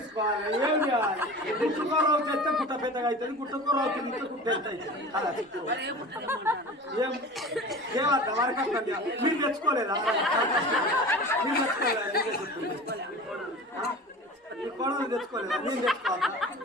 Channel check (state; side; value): normal; both; correlation 0.36